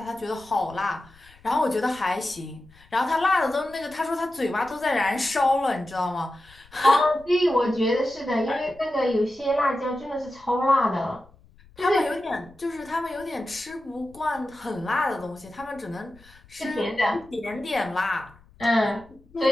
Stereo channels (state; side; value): noise; left; rumble, 26 dB below the sound